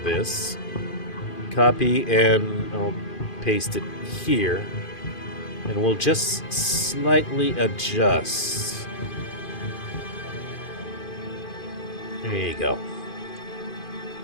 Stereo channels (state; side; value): late; right; 2.5 ms